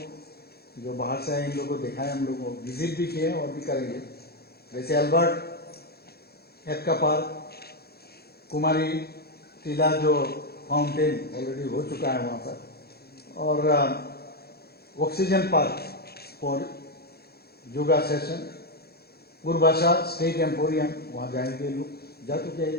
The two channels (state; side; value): late; right; 0.46 ms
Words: जो बाहर से आए इन लोगों को दिखाए, हम लोग को विजिट भी किए और भी करेंगे। जैसे अल्बर्ट एक्का पार्क, कुमारी टीला जो फाउंटेन ऑलरेडी हो चुका है वहाँ पर, और oxygen park for yoga session, Purbasha state emporium वहाँ जाएंगे लोग, जा चुके